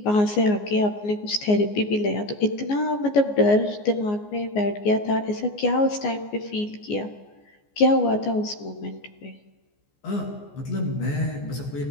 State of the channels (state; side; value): late; right; 14 ms